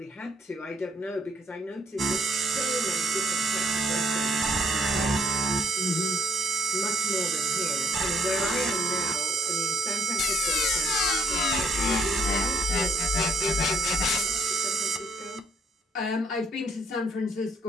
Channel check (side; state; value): both; normal; correlation 0.69